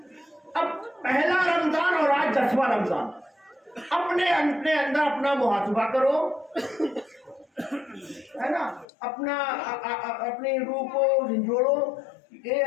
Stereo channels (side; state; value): right; drops out; at 8.8 s